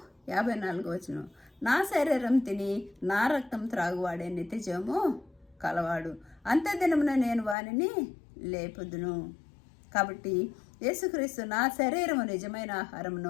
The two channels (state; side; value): drops out; right; at 7.6 s